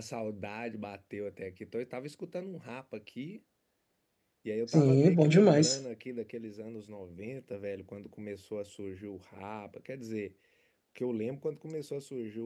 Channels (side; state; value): both; identical; correlation 1.00